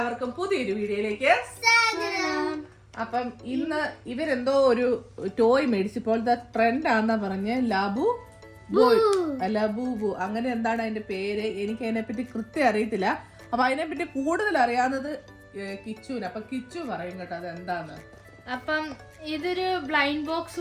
പുതിയൊരു വീഡിയോയിലേക്ക് സ്വാഗതം. അപ്പം ഇന്ന് ഇവരെന്തോ ഒരു ടോയ് മേടിച്ചപ്പോഴത്തെ ട്രെൻഡാന്നാ പറഞ്ഞ് ലബു ബൂ അങ്ങനെ എന്താണ് അതിന്റെ പേര്, എനിക്ക് അതിനെപ്പറ്റി കൃത്യം അറിയത്തില്ല. അപ്പൊ അതിനെപ്പറ്റി കൂടുതൽ അറിയാവുന്നത് കിച്ചുവിന്. അപ്പൊ കിച്ചു പറയും കേട്ടോ അത് എന്താന്ന്. അപ്പം ഇതൊരു ബ്ലൈൻഡ് ബോക്സ്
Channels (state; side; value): identical; both; correlation 1.00